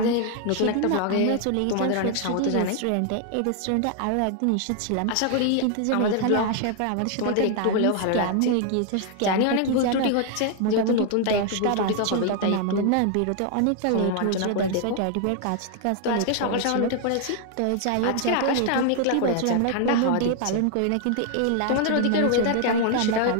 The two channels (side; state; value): both; different; correlation 0.00